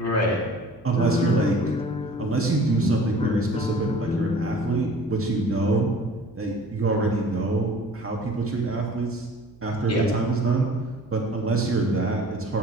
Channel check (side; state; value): right; noise; hum, 26 dB below the sound